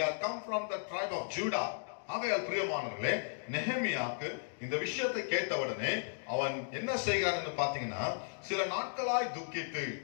are come from the tribe of Judah. ஆகையால் பிரியமானவர்களே, நெகேமியாவுக்கு இந்த விஷயத்தை கேட்டவுடனே அவன் என்ன செய்கிறான் என்று பாத்தீங்கன்னா, சில நாட்களாய் துக்கித்து,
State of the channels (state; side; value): silent; right; digital silence